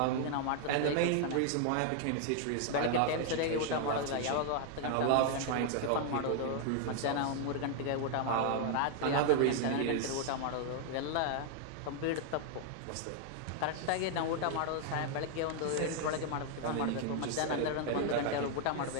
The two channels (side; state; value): both; different; correlation 0.00